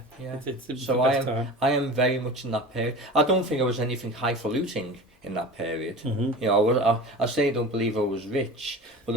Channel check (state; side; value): normal; both; correlation 0.34